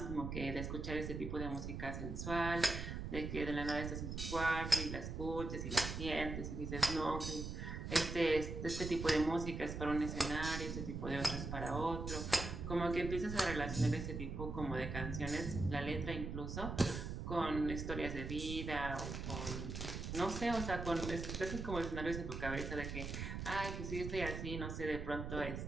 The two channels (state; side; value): noise; right; rumble, 5 dB below the sound